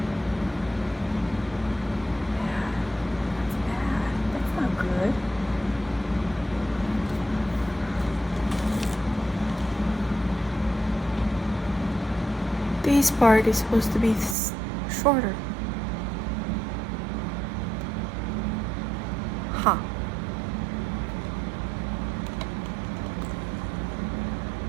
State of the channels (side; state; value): left; drops out; at 14.4 s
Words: bad. That's not good. This part is supposed to be shorter. Huh.